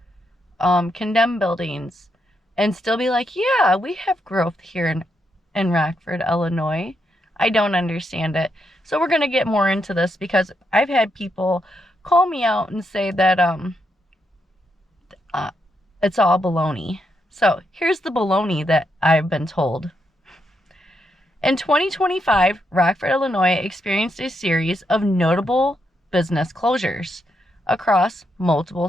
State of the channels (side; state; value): both; normal; correlation 0.81